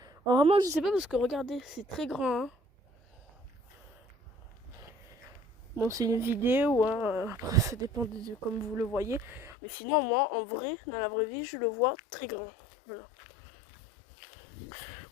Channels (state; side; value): drops out; right; at 9.6 s